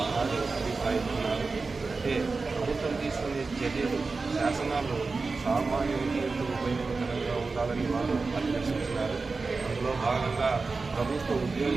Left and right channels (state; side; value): quieter; left; 4.1 dB